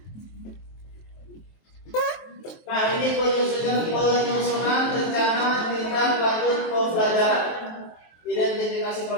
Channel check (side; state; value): right; late; 23 ms